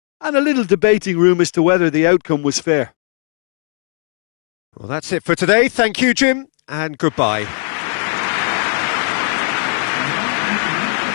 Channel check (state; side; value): silent; right; 62 dB below the other